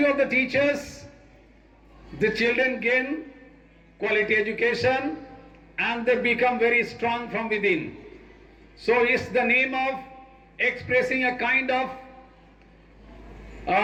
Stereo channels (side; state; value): both; identical; correlation 1.00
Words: of the teachers, the children gain quality education and they become very strong from within. So it's the name of expressing a kind of